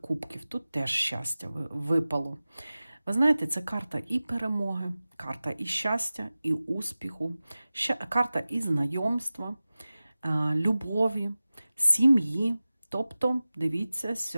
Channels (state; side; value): inverted; both; correlation -0.96